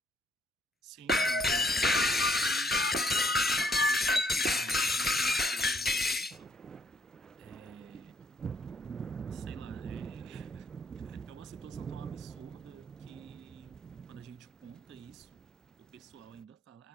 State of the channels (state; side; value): normal; both; correlation 0.68